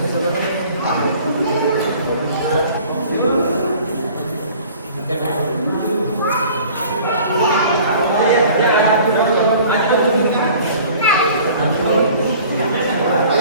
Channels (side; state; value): both; inverted; correlation -0.49